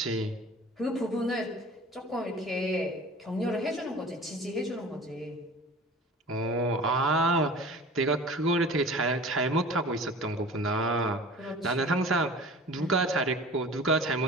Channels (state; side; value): normal; both; correlation 0.41